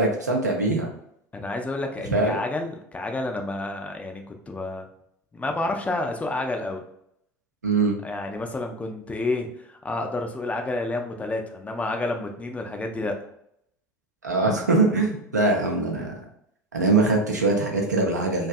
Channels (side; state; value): both; normal; correlation 0.18